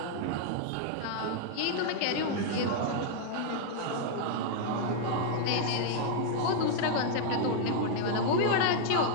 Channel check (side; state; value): both; different; correlation -0.01